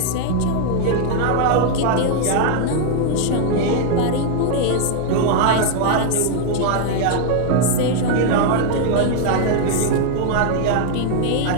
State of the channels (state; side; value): different; both; correlation 0.00